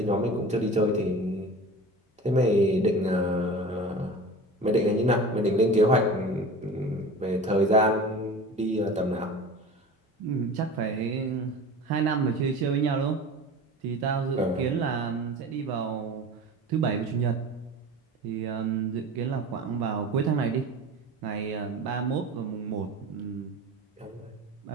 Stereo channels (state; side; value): normal; both; correlation 0.36